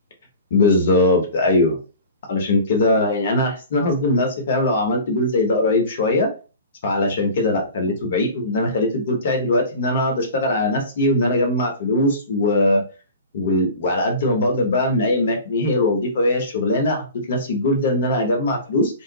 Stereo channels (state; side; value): inverted; both; correlation -0.38